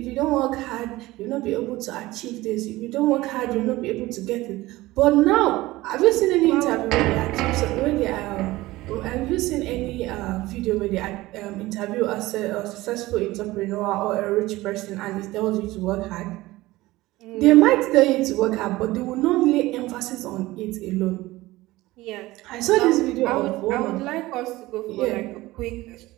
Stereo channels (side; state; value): left; quieter; 18.6 dB